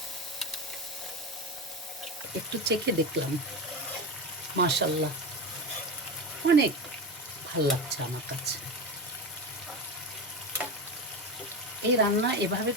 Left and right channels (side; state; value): both; normal; correlation 0.20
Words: একটু চেখে দেখলাম, মাশাল্লাহ অনেক ভাল লাগছে আমার কাছে। এই রান্না এভাবে